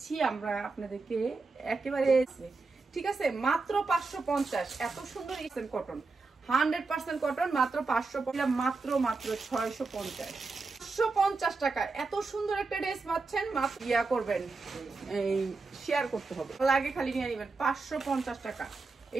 আমরা আপনাদেরকে একেবারে। ঠিক আছে, মাত্র 550। এত সুন্দর ইসেন কটন, 100% কটন, মাত্র 550, মাত্র মাত্র 650। 550 টাকা এত সুন্দর একটা ড্রেস পাচ্ছেন। মাত্র ইয়া করবেন, এই শেয়ার করতে হবে, লাগে খালি নিয়ে নেবেন। 550 টাকা।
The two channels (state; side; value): quieter; left; 4.0 dB